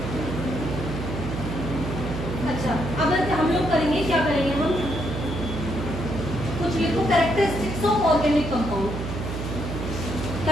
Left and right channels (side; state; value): right; noise; hum, 5 dB below the sound